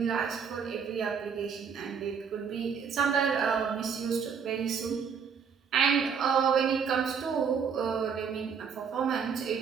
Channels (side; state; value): left; quieter; 6.6 dB